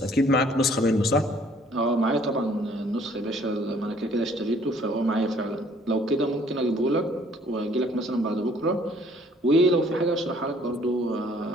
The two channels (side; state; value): both; normal; correlation 0.59